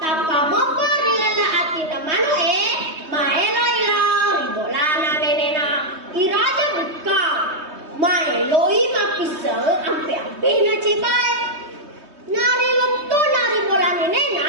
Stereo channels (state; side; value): late; left; 3.2 ms